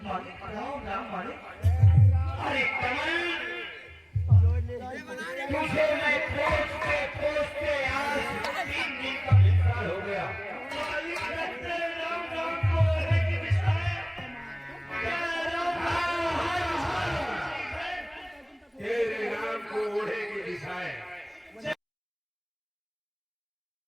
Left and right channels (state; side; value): identical; both; correlation 1.00